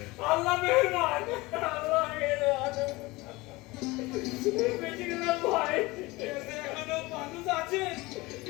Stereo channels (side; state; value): right; quieter; 21.8 dB